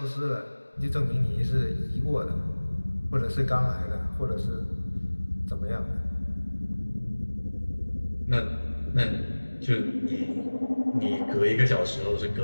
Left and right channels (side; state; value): both; inverted; correlation -1.00